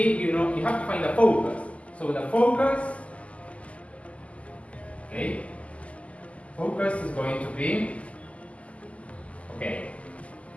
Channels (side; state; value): right; late; 0.065 ms